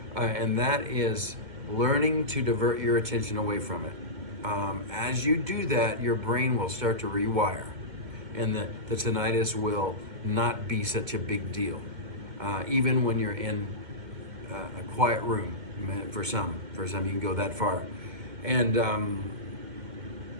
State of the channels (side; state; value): left; late; 2.1 ms